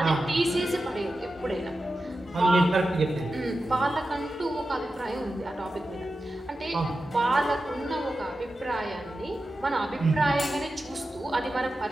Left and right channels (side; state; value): both; normal; correlation 0.92